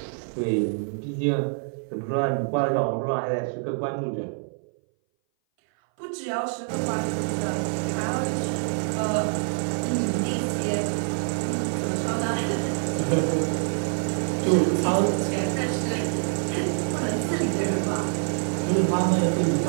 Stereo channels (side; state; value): left; silent; 59 dB below the other